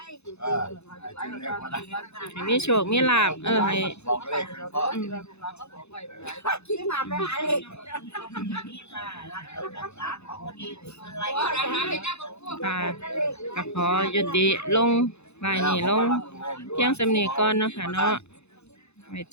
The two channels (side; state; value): right; late; 0.81 ms